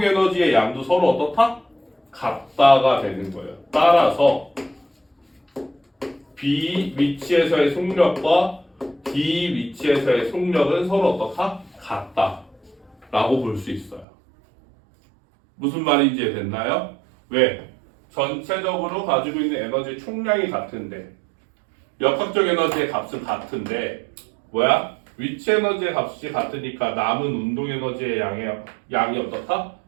에너지의 양도 서로 어떻다? 같다가 되는 거예요. 따라서 B 위치에서의 속력과 D 위치에서의 속력은 서로 어떻다? 같다라고 볼 수 있어요. 무슨 말인지 됐나요? 왜? 전체적으로 가지고 있는 에너지 총량이 같은데 역학적 에너지의 값은 같은데 뭐야? 위치 에너지의 값이 같으니까 남은 운동 에너지의 양이 어떻다?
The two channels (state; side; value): drops out; left; at 14.1 s